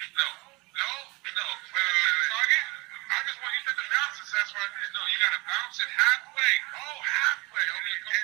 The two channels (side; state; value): left; quieter; 25.0 dB